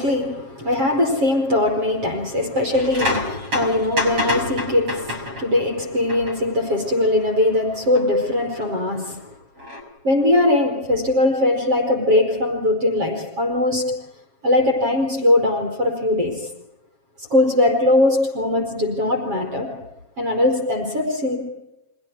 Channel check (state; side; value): late; left; 7.4 ms